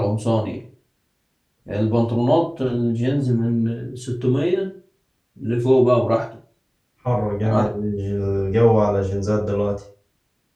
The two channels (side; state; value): both; identical; correlation 1.00